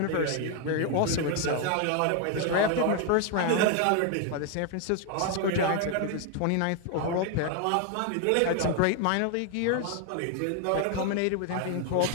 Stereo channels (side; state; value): both; different; correlation 0.01